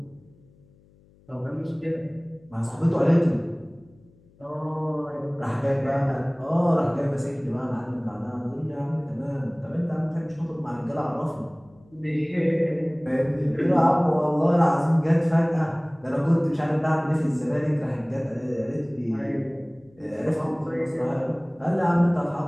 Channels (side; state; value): left; noise; hum, 29 dB below the sound